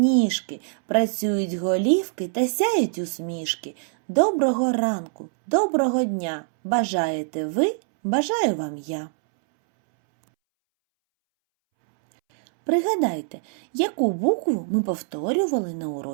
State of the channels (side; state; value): left; silent; 63 dB below the other